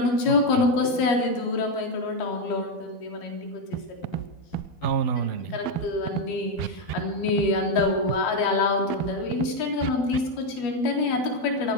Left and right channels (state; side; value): late; right; 13 ms